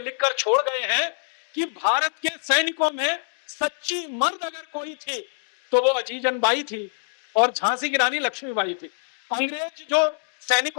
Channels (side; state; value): right; silent; digital silence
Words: छोड़ गए हैं कि भारत के सैनिकों में सच्ची मर्द अगर कोई थी तो वो अजीजन बाई थी और झांसी की रानी लक्ष्मीबाई थी। अंग्रेज जो